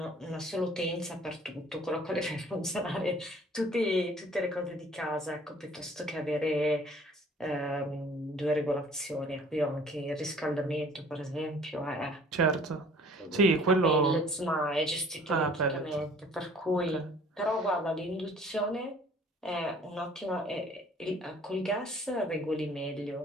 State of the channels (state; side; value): normal; both; correlation 0.53